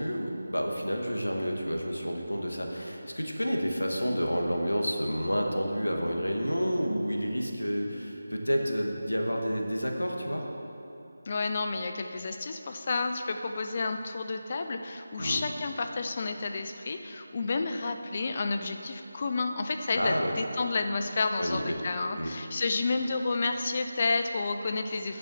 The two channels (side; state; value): both; inverted; correlation -0.94